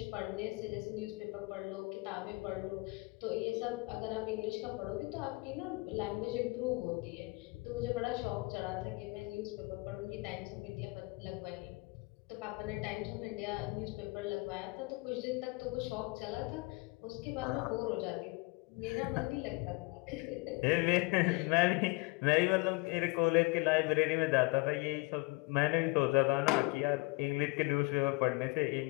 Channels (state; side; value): quieter; right; 25.9 dB